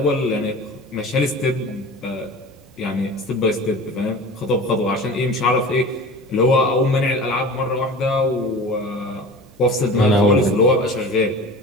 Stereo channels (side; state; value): both; normal; correlation 0.37